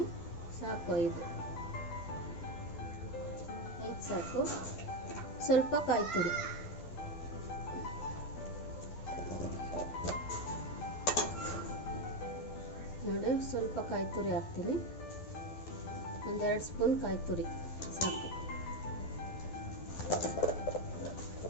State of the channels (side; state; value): right; late; 12 ms